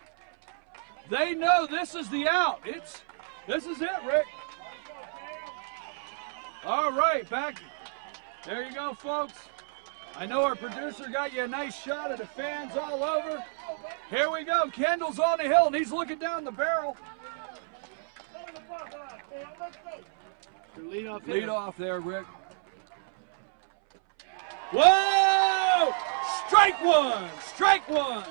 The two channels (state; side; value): silent; left; 58 dB below the other